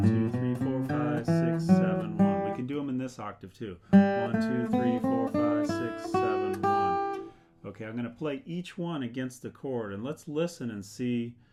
2, 3, 4, 5, 6, 7, 1. We can do them in this octave too: 1, 2, 3, 4, 5, 6, 7, 1. Okay, I'm going to play each one against the chord, and let's listen and see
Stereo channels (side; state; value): both; identical; correlation 1.00